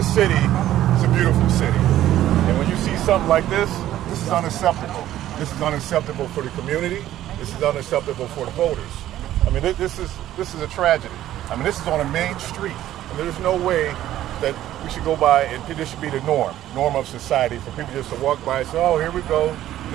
city is a beautiful city. And when you see something like this is unacceptable. This is unacceptable for the community. This is unacceptable for the voters. I mean, this is a tragedy. I mean, this is on a main street. And there's no way that we should go by and this should be the norm of society for people just to walk by and say, oh, here we go.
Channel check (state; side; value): quieter; left; 13.1 dB